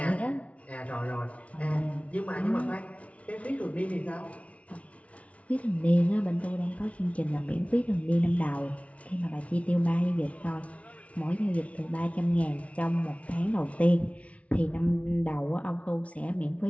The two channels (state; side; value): late; right; 0.065 ms